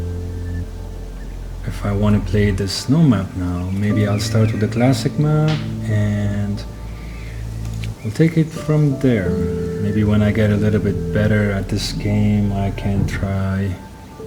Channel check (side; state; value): both; identical; correlation 1.00